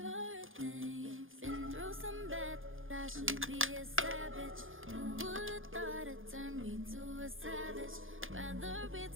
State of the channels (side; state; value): left; late; 0.59 ms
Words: things. Been through some bad, I should be a savage. Who would've thought it turned me to a savage? Rather be